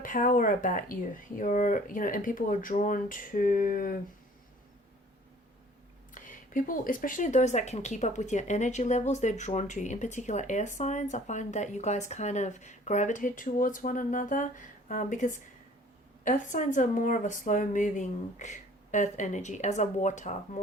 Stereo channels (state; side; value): normal; both; correlation 0.52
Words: about you. And people are drawn to people, especially those that can keep up with your energy levels. They're drawn to you. In particular, air signs. I find that you guys kind of gravitate towards one another, because Earth signs are more of a slow moving earth energy, as a water,